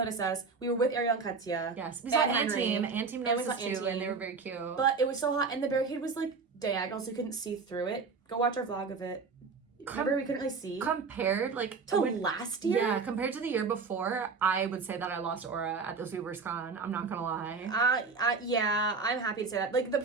us. We were with Ariel and Katya. Yes, we saw Anteam. Anteam noticed us too, and they were very cute. But it was so hot, and the barricade was diagonal, so you couldn't see through it. Go watch our vlog of it. Remember, we couldn't really see. Compared, to last year? Yeah, compared to the year before, I would say that I lost aura at this Weaver's Con. I'm not gonna lie. Yeah, I'm happy to say that. The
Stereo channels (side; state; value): left; quieter; 4.8 dB